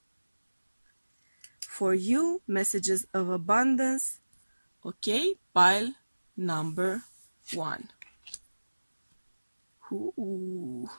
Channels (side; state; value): both; inverted; correlation -1.00